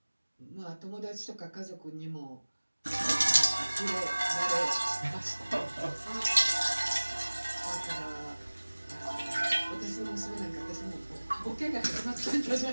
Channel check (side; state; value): both; inverted; correlation -1.00